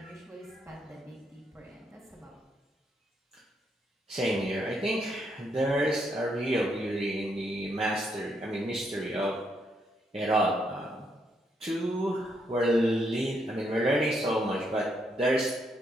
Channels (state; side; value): normal; both; correlation 0.76